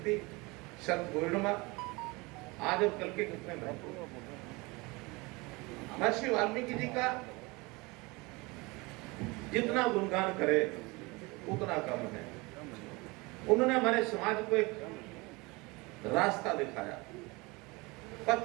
शरद पूर्णिमा, आज और कल के कितने महत्व। महर्षि वाल्मीकि जी का जितना गुणगान करे उतना कम है। उन्होंने हमारे समाज को एक रास्ता दिखाया,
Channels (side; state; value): left; quieter; 25.0 dB